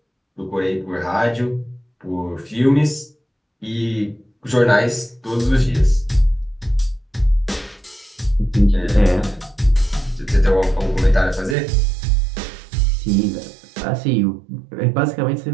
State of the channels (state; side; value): drops out; left; at 11.6 s